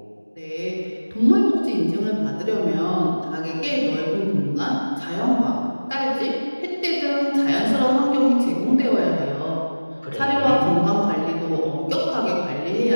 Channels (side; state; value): both; inverted; correlation -1.00